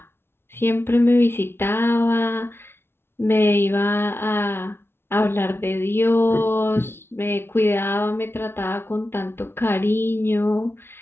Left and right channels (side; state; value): right; late; 0.11 ms